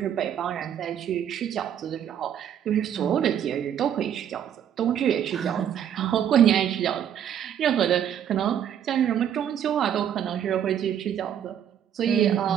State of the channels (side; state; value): left; quieter; 9.5 dB